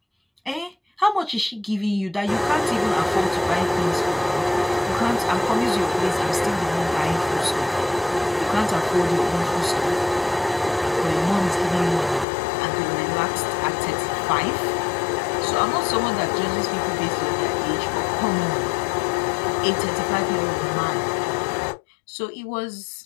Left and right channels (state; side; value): drops out; right; at 12.2 s